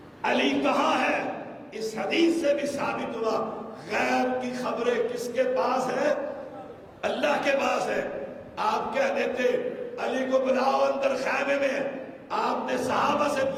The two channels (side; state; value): both; identical; correlation 1.00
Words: علی کہاں ہے؟ اس حدیث سے بھی ثابت ہوا غیب کی خبریں کس کے پاس ہے؟ اللہ کے پاس ہے. آپ کہہ دیتے علی کو بلاؤ اندر خیمے میں. آپ نے صحابہ سے